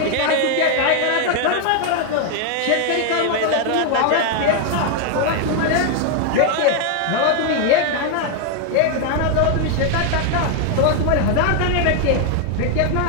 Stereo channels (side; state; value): both; different; correlation 0.00